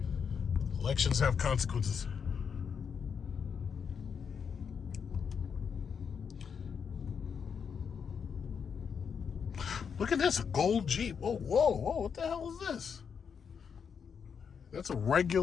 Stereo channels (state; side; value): quieter; right; 6.7 dB